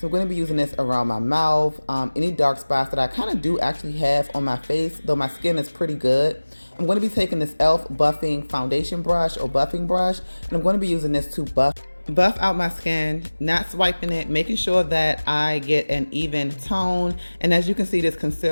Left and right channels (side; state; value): both; inverted; correlation -1.00